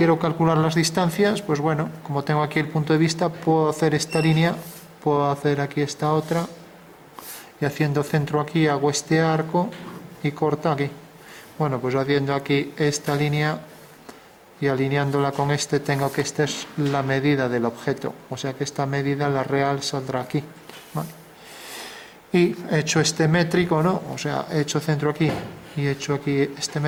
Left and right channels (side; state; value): both; identical; correlation 1.00